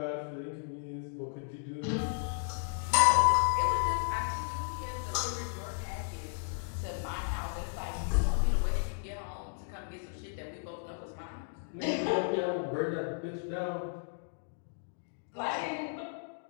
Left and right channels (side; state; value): right; silent; digital silence